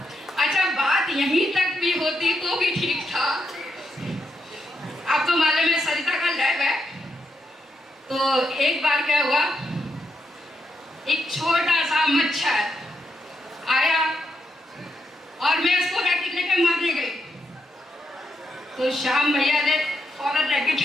अच्छा, बात यहीं तक भी होती तो भी ठीक था। आप तो मालूम है सरिता का लैब है। तो एक बार क्या हुआ, एक छोटा सा मच्छर आया और मैं उसको रैकेट लेकर मारने गई। तो श्याम भैया ने फौरन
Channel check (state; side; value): normal; both; correlation 0.81